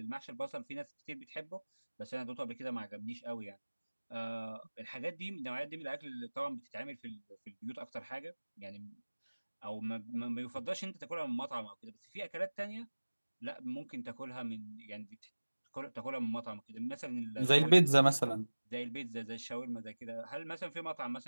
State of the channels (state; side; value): inverted; both; correlation -1.00